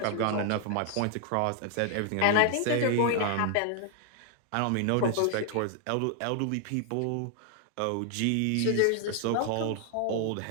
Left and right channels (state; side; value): different; both; correlation 0.00